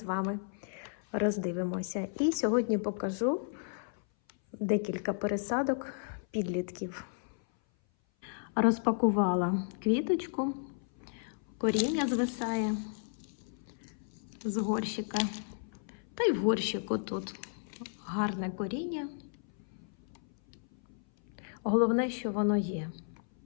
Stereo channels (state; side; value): silent; right; 55 dB below the other